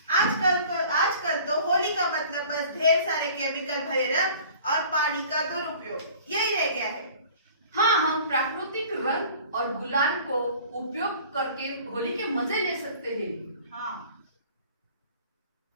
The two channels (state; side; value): inverted; both; correlation -0.47